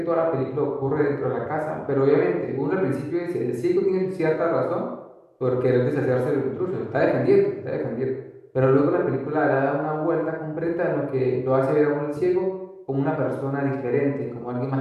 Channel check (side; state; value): both; identical; correlation 1.00